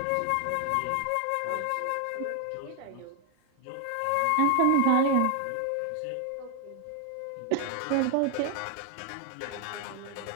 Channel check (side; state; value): both; different; correlation 0.00